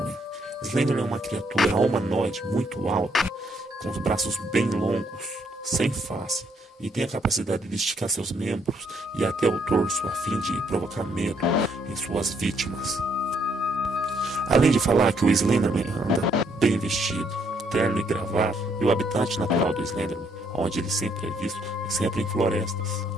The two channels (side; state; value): both; normal; correlation 0.71